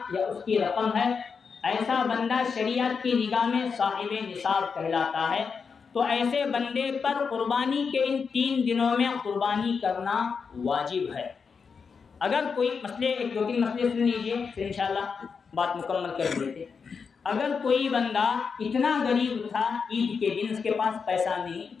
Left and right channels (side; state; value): right; quieter; 5.6 dB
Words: یا اس کی رقم ہے، ایسا بندہ شریعت کی نگاہ میں صاحب نصاب کہلاتا ہے. تو ایسے بندے پر قربانی کے ان 3 دنوں میں قربانی کرنا واجب ہے. اگر کوئی مسئلے ایک دو تین مسئلے سن لیجئے پھر انشاءاللہ بات مکمل کر دیتے. اگر کوئی بندہ اتنا غریب تھا عید کے دن اس کے پاس پیسہ نہیں